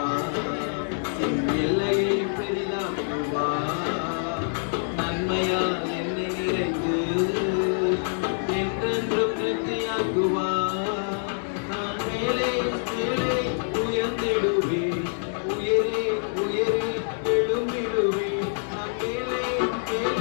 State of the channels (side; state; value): right; silent; digital silence